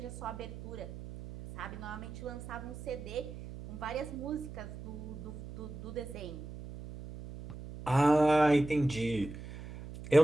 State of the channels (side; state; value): right; noise; hum, 11 dB below the sound